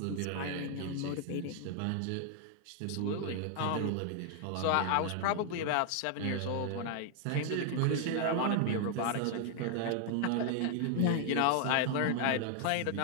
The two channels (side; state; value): both; different; correlation 0.00